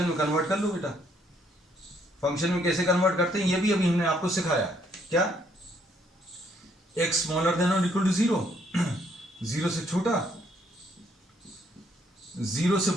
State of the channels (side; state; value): both; normal; correlation 0.69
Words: में कन्वर्ट कर लो बेटा। फंक्शन में कैसे कन्वर्ट करते हैं ये भी अभी हमने आपको सिखाया। क्या, x smaller than or equal to 0, 0 से छोटा, 0 से